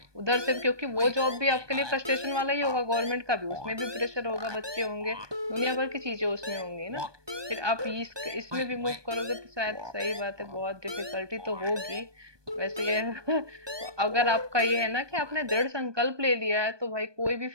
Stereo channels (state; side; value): late; left; 1.2 ms